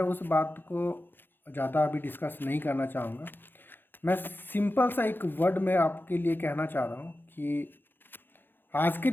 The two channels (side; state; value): right; late; 0.099 ms